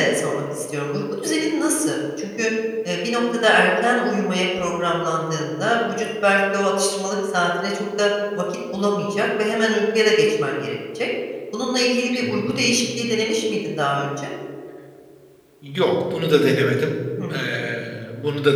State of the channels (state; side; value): identical; both; correlation 1.00